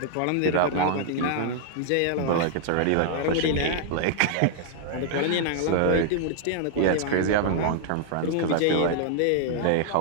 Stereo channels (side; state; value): both; different; correlation -0.01